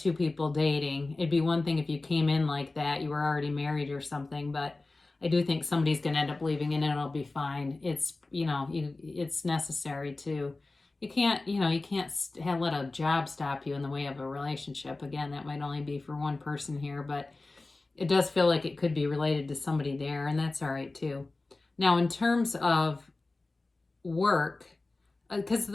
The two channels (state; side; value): quieter; right; 3.3 dB